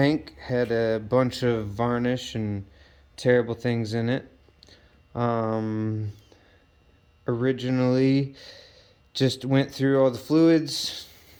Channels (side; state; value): both; identical; correlation 1.00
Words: had a bunch of varnish and terrible things in it. Originally just went through all the fluids,